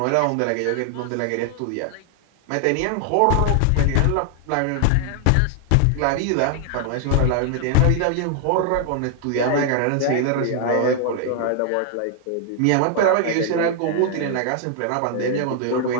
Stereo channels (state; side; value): different; both; correlation 0.00